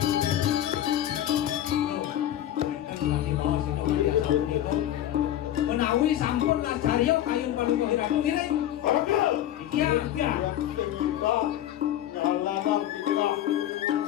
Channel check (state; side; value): quieter; right; 12.3 dB